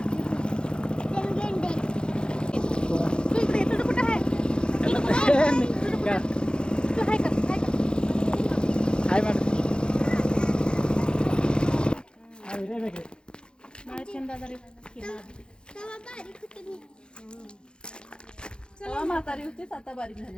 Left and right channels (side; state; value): right; late; 0.050 ms